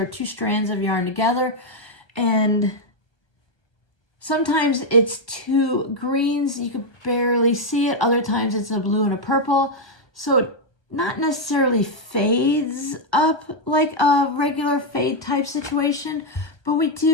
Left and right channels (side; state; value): right; late; 1.2 ms